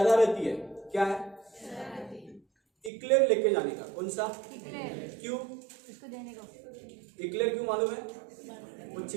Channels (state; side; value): drops out; left; at 2.9 s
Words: है, क्या है? इक्लेयर लेके जाने का। कौन सा? क्यों? इसको देने को। इक्लेयर क्यों मालूम है? वो